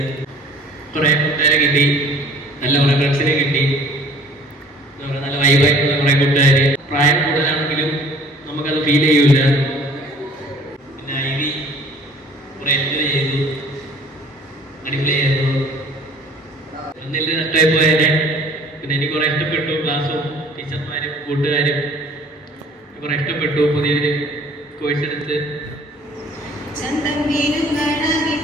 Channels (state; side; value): normal; both; correlation 0.52